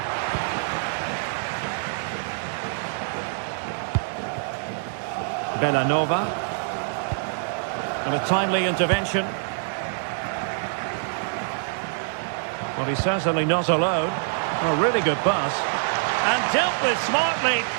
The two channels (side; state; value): left; silent; digital silence